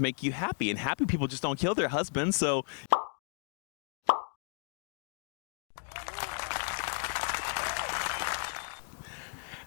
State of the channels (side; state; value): right; silent; 55 dB below the other